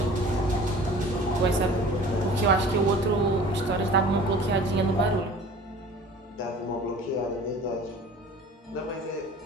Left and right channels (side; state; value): both; normal; correlation 0.45